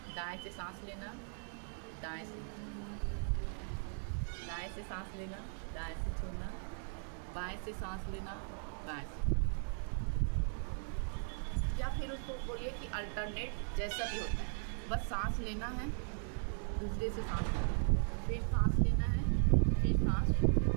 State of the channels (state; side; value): silent; left; 53 dB below the other